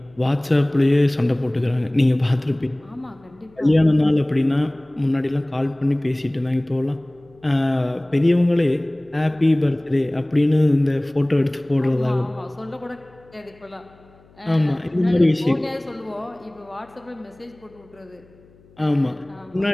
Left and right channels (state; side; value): noise; left; hum, 29 dB below the sound